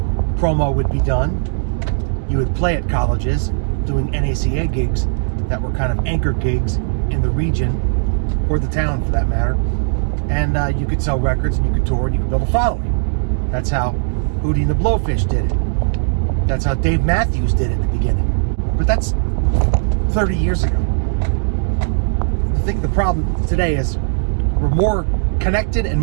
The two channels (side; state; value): left; silent; digital silence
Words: promo would be done. You would play at colleges doing NACA gigs that were kind of anchor gigs in the region, or the town for that matter. And you could sell records, and you could tour, and you could build a following. That's how Hootie and the Blowfish did it. That's how Dave Matthews did it at the beginning. But that's 30 years ago. I think the problem today is we're more connected and